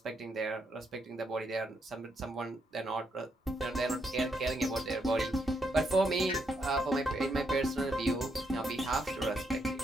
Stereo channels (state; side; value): normal; both; correlation 0.78